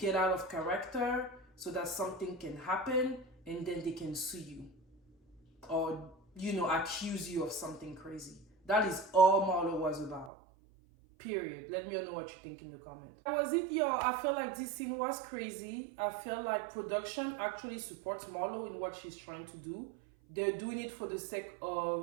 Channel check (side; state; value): left; drops out; at 10.3 s